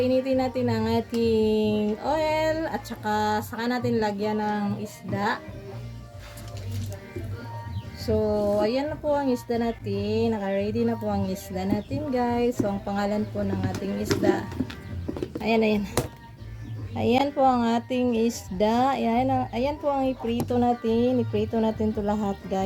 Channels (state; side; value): identical; both; correlation 1.00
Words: natin ang ating oil at saka natin lagyan ng isda. So, ayan na po ang isda natin. Naka-ready na po ang isda natin, guys. So, ang pangalan po ng ating isda. Ayan. Ayan po ang ating isda. Ayan po ang iprito natin. Iprito natin to lahat,